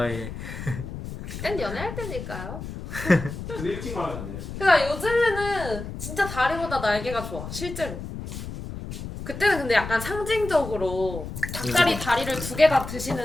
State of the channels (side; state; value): left; noise; rumble, 9 dB below the sound